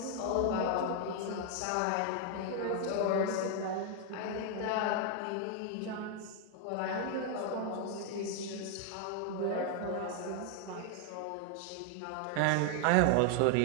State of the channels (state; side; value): different; both; correlation 0.00